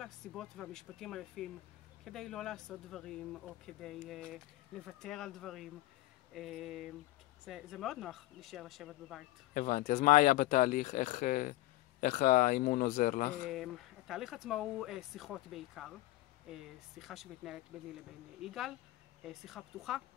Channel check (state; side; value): quieter; right; 17.5 dB